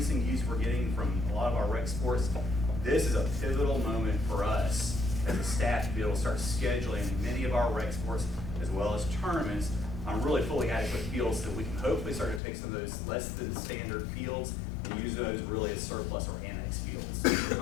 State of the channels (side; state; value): right; drops out; at 12.4 s